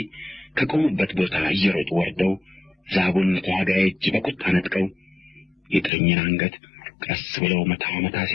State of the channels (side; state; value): right; drops out; at 5.9 s